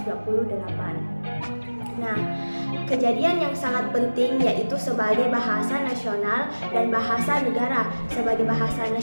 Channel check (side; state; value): both; inverted; correlation -1.00